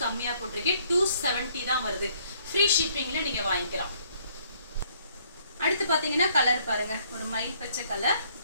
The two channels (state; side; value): inverted; both; correlation -0.65